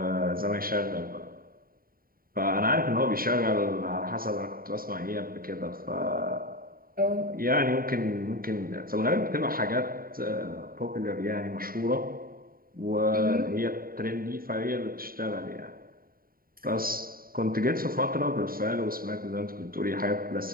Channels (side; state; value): left; late; 0.42 ms